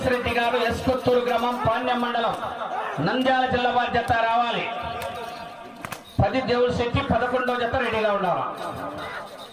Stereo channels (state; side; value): identical; both; correlation 1.00